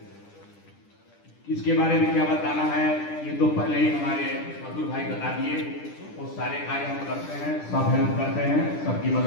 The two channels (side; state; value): right; late; 10 ms